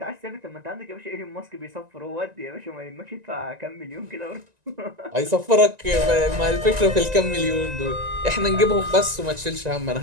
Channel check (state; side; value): late; left; 1.9 ms